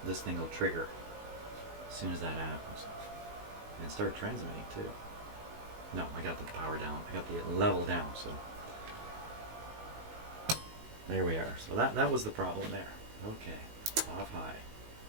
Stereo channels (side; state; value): left; late; 19 ms